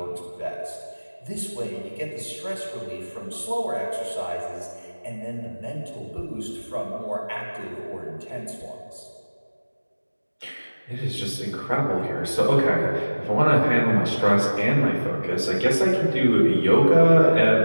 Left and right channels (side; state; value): both; inverted; correlation -1.00